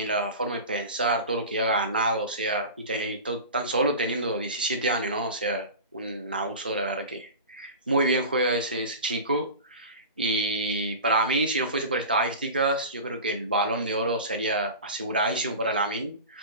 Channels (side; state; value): both; inverted; correlation -0.31